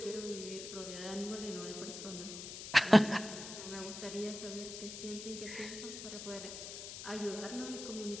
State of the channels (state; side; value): noise; left; hiss, 9 dB below the sound